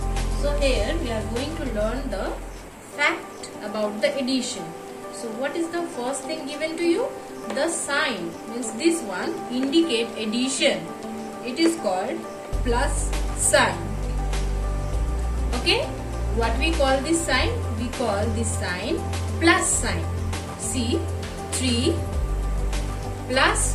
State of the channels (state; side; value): identical; both; correlation 1.00